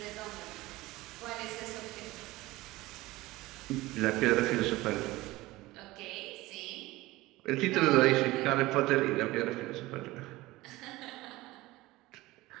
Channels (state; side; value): quieter; left; 19.2 dB